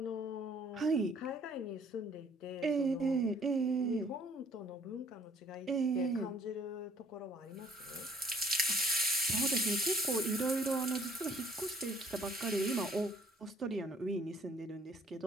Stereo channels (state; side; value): normal; both; correlation 0.59